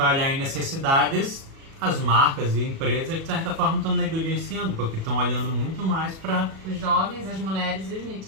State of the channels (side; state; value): left; late; 37 ms